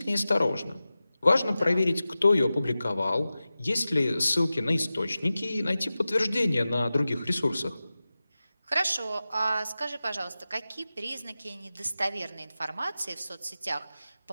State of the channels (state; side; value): inverted; both; correlation -0.95